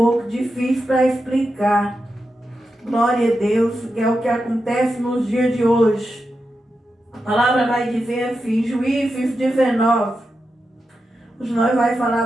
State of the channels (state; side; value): normal; both; correlation 0.89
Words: difícil para explicar. Glória a Deus, que é o que acontece nos dias de hoje. A palavra vai dizer assim, Juízes 19. Hoje nós vamos